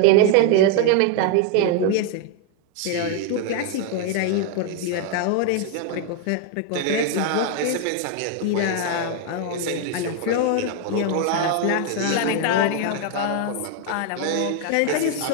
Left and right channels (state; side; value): different; both; correlation 0.01